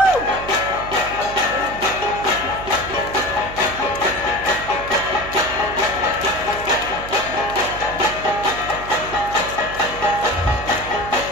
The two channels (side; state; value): right; noise; hum, 13 dB below the sound